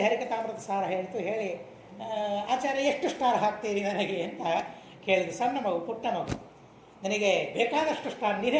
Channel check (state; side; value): identical; both; correlation 1.00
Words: ಹರಿಕಥಾಮೃತ ಸಾರ ಹೇಳಿತು, ಹೇಳಿ ಆಚಾರ್ಯ ಎಷ್ಟು ಸ್ಟಾರ್ ಹಾಕ್ತೀರಿ ನನಗೆ ಅಂತ ಕೇಳಿದ್ರು. ಸಣ್ಣ ಮಗು, ಪುಟ್ಟ ಮಗು, ನನಗೆ ಬೇಕಾದಷ್ಟು ಸ್ಟಾರ್